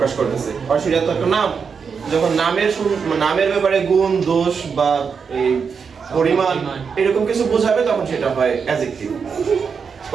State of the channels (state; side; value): quieter; left; 6.0 dB